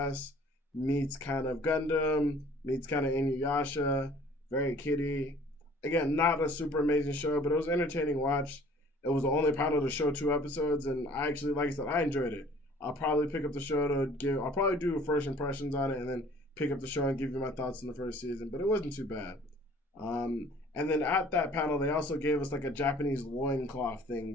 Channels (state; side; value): normal; both; correlation 0.52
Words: meets kind of Gundam, meets kind of Inuyasha, very kiddie. Again, not a super amazing show, but it was an entertaining watch. It was the only panel to show 2 episodes, and I actually, like I said, I enjoyed it. I'll probably pick up the show I'll probably do first impressions on it and then pick up the show and give you my thoughts on the first season, but it wasn't too bad. And then at that panel, they also gave us a Japanese loincloth